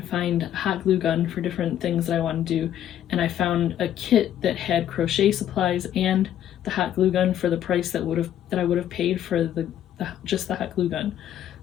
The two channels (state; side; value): quieter; right; 11.0 dB